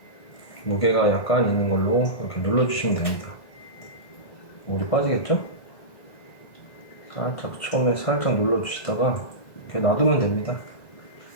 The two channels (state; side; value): late; right; 1.5 ms